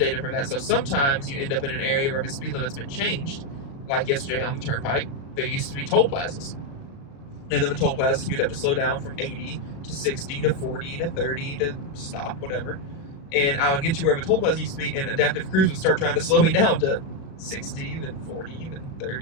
for that. So sometimes you end up in an area where the speed limit's been changed, like yesterday on the turnpike. There used to be toll plazas. And then the toll plazas, you'd have to slow down from 80 to 60 to 40 to 30 to stop, whatever. And I would get to where the toll plaza used to be, and adaptive cruise would start trying to slow me down to 60, then 40, then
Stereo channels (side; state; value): right; late; 36 ms